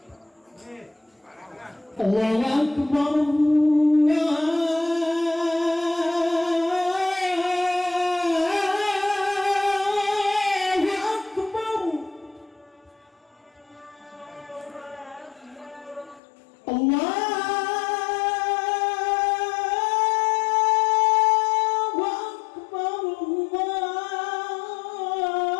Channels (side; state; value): right; drops out; at 16.2 s